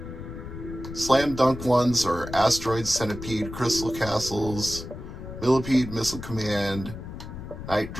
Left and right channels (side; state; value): left; noise; rumble, 10 dB below the sound